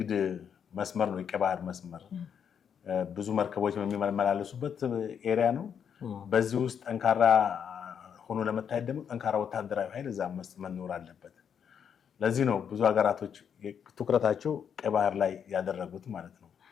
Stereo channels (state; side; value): quieter; right; 7.8 dB